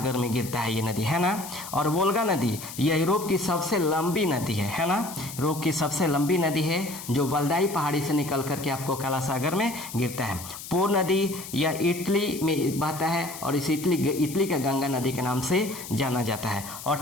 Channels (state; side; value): noise; left; hiss, 12 dB below the sound